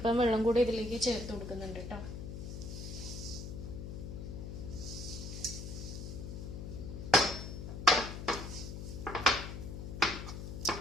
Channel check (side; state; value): left; noise; hum, 7 dB below the sound